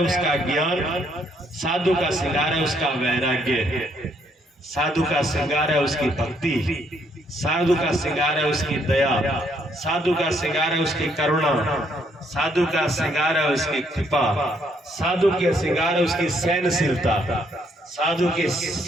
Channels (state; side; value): normal; both; correlation 0.70